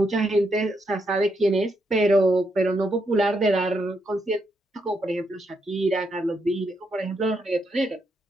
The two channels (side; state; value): both; normal; correlation 0.79